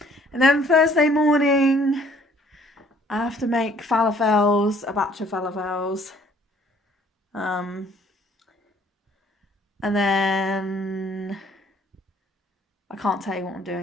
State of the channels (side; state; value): both; normal; correlation 0.59